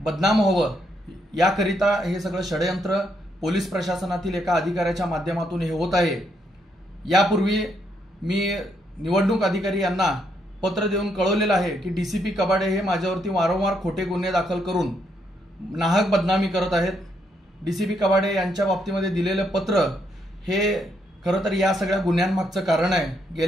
व्हावं याकरिता हे सगळं षडयंत्र पोलीस प्रशासनातील एका अधिकाऱ्याच्या माध्यमातून हे होत आहे। यापूर्वी मी निवडणूक अधिकारी यांना पत्र देऊन कळवलेलं आहे की डीसीपी कबाडे हे माझ्यावरती वारंवार खोटे गुन्हे दाखल करून नाहक बदनामी करत आहेत। डीसीपी कबाडे यांच्या बाबतीमध्ये दिलेलं पत्र हे खरं तर या सगळ्या गुन्ह्यांमागचं कारण आहे।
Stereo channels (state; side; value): normal; both; correlation 0.76